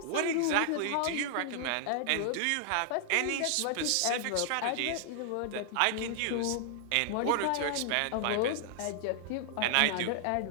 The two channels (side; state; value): both; different; correlation 0.00